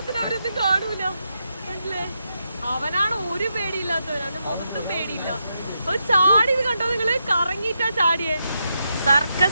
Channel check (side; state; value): both; inverted; correlation -0.84